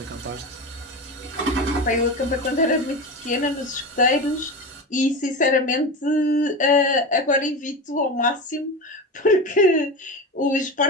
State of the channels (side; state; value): both; normal; correlation 0.23